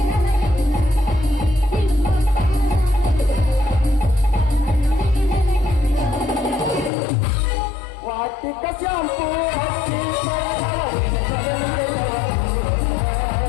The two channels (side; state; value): right; drops out; at 6.9 s